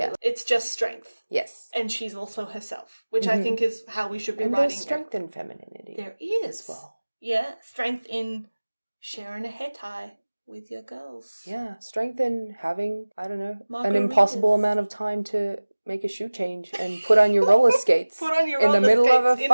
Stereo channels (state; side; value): inverted; both; correlation -1.00